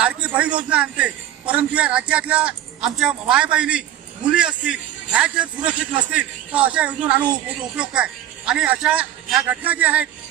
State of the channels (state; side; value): quieter; left; 12.1 dB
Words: बहीण योजना आणते, परंतु या राज्यातल्या आमच्या मायबहिणी मुली असतील ह्या जर सुरक्षित नसतील तर अशा योजना आणून उपयोग काय। आणि अशा ह्या घटना ज्या आहेत